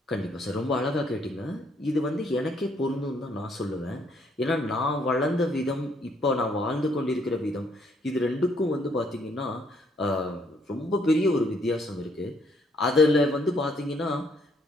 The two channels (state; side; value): normal; both; correlation 0.68